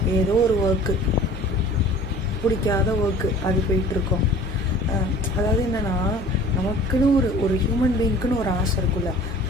ஏதோ ஒரு ஒர்க்கு, பிடிக்காத ஒர்க்கு, அது போயிட்டுருக்கோம். அதாவது என்னென்னா, நமக்குன்னு ஒரு ஹியூமன் பீயிங்க்குன்னு ஒரு ஆசை இருக்குல்ல,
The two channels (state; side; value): normal; both; correlation 0.46